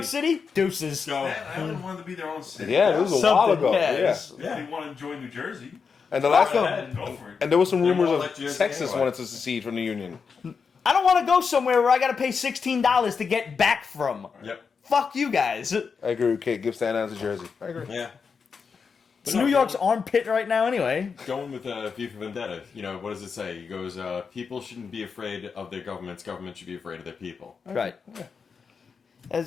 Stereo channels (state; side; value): quieter; right; 5.6 dB